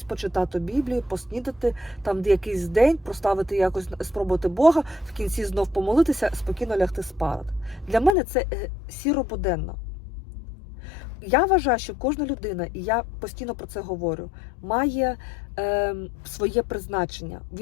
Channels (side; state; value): right; drops out; at 8.2 s